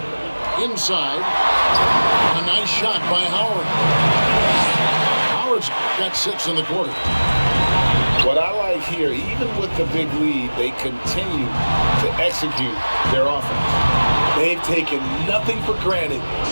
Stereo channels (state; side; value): inverted; both; correlation -1.00